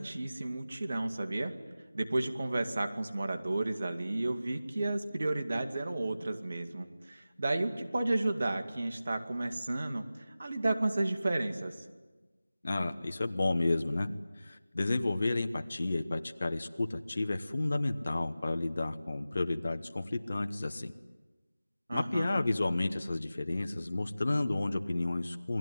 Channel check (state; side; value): inverted; both; correlation -0.95